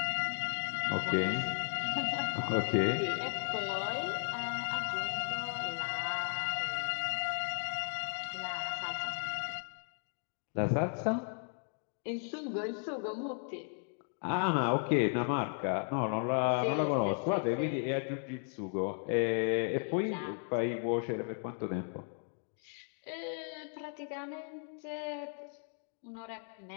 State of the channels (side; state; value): right; silent; 54 dB below the other